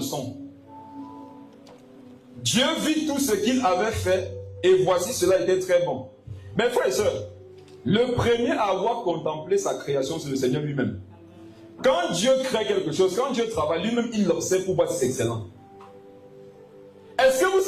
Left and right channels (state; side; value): identical; both; correlation 1.00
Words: son. Dieu vit tout ce qu'il avait fait, et voici, cela était très bon. Mes frères et sœurs, le premier à avoir contemplé sa création, c'est le Seigneur lui-même. Quand Dieu crée quelque chose, quand Dieu travaille, lui-même, il l'observe pour voir si c'est excellent. Est-ce que vous